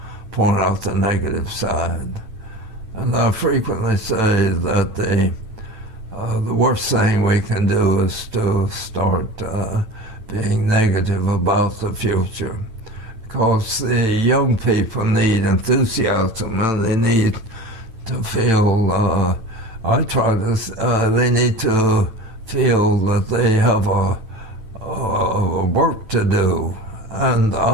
point out the negative side. And I frequently say that the worst thing we can do is to start being negative about the future. Because the young people need enthusiasm, and they need to feel, they need to feel that they have a work to do. And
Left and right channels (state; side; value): late; left; 9.0 ms